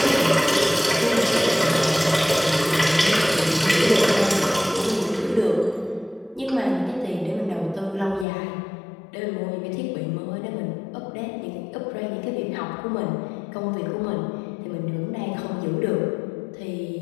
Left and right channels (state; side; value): drops out; right; at 8.2 s